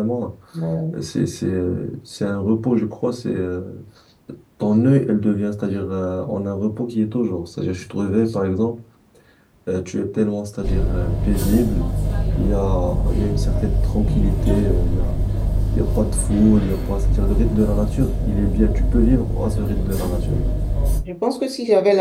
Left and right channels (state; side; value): identical; both; correlation 1.00